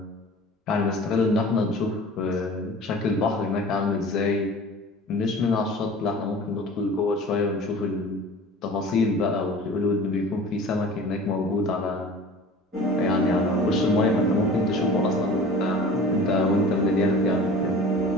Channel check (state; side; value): normal; both; correlation 0.42